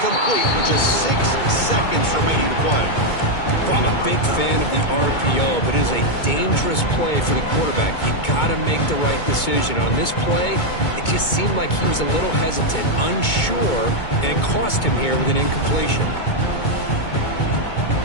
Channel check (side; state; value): right; late; 2.2 ms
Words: with just 6 seconds remaining to play. Well, I'm a big fan of the RPO, but it is a dangerous play for the quarterback. You got to make the right decision. On this play, it just seemed like he was a little hesitant, unsure, and it cost him here with an incompletion.